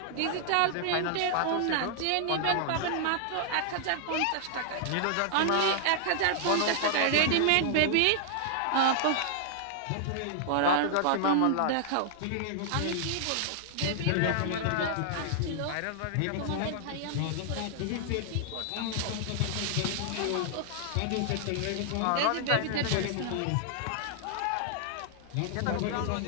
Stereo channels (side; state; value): both; different; correlation -0.01